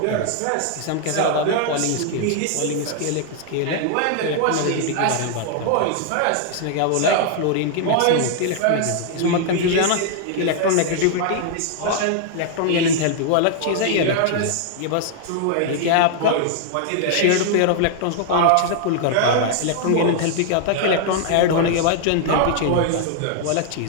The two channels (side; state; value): both; different; correlation 0.00